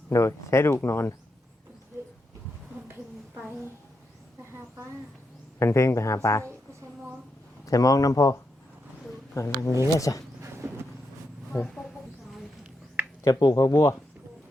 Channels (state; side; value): normal; both; correlation 0.83